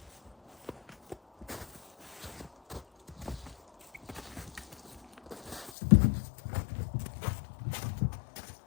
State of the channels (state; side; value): drops out; right; at 5.7 s